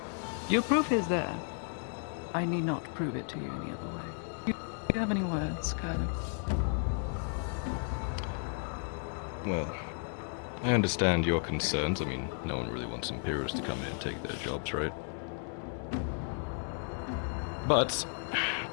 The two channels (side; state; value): right; silent; 55 dB below the other